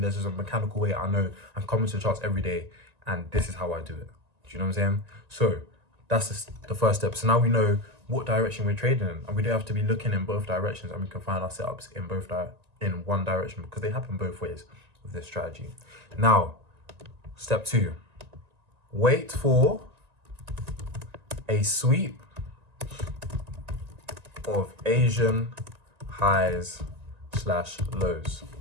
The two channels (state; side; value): late; left; 1.9 ms